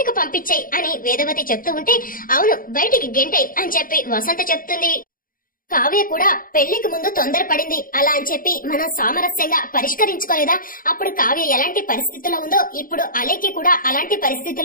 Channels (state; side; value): late; right; 0.41 ms